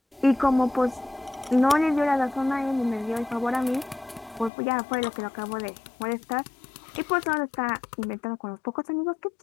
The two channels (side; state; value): right; drops out; at 4.5 s